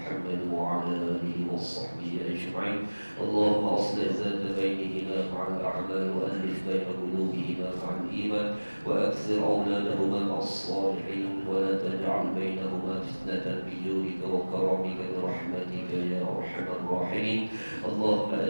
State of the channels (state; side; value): inverted; both; correlation -1.00